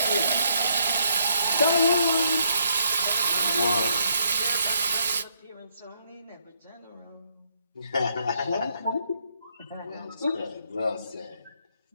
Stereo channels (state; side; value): inverted; both; correlation -0.72